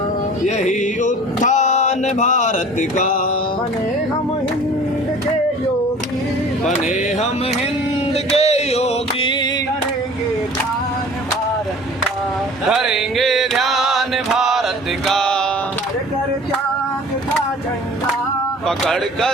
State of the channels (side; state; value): both; normal; correlation 0.45